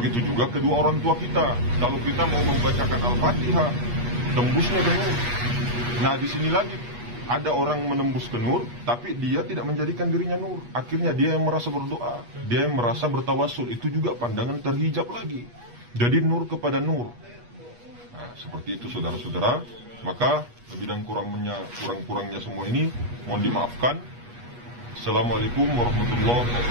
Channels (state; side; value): late; left; 8.3 ms